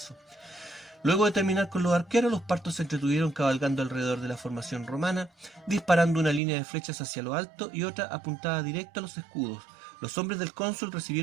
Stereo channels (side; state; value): left; drops out; at 6.4 s